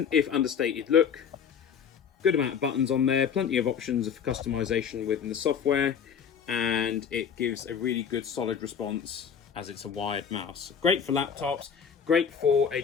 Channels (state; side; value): quieter; right; 7.3 dB